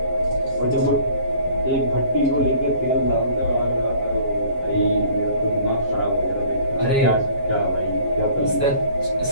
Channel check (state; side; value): late; right; 7.4 ms